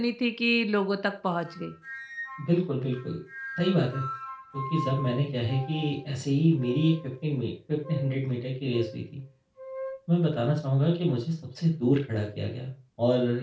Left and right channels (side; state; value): both; identical; correlation 1.00